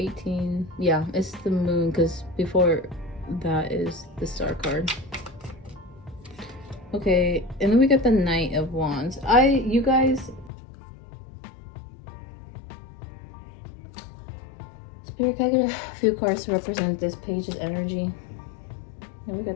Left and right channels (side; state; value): right; drops out; at 10.5 s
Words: Yeah, it's the Moon, because before that is the Star card. Okay, and then we got the Knight of Wands. You guys, Spirit, can I get a few cards to represent this page's energy? And we